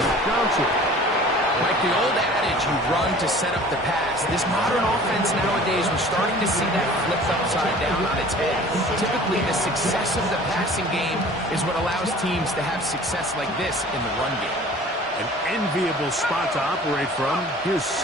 Johnson. Like the old adage, you run to set up the pass. This modern offense nowadays, we're starting to see that flipped upside down on its head. Typically, the success of the passing game is what allows teams to have success like this in the run game. An enviable spot to operate from. Here's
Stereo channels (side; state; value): both; normal; correlation 0.46